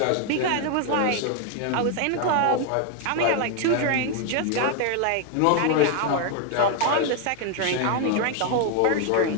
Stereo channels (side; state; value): both; different; correlation 0.01